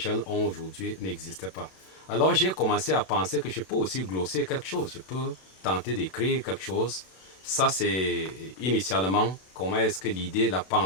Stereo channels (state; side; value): late; right; 32 ms